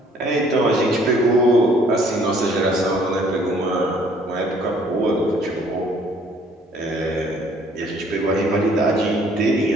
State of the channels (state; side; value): normal; both; correlation 0.60